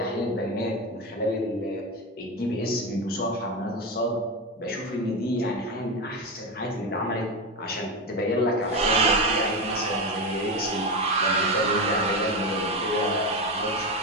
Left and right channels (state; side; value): normal; both; correlation 0.16